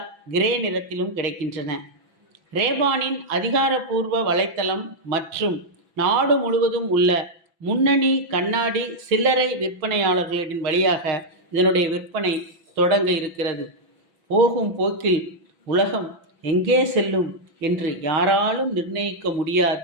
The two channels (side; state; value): left; late; 6.0 ms